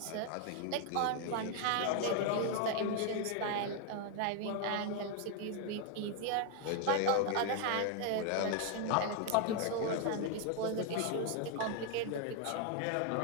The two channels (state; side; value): different; both; correlation 0.00